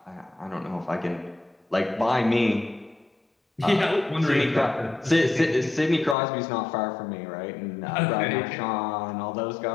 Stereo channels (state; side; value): drops out; right; at 6.2 s